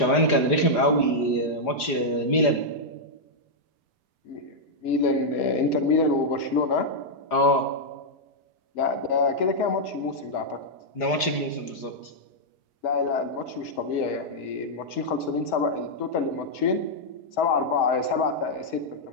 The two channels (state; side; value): late; right; 4.9 ms